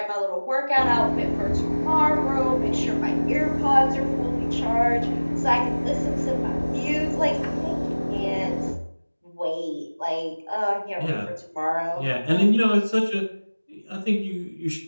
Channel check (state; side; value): inverted; both; correlation -1.00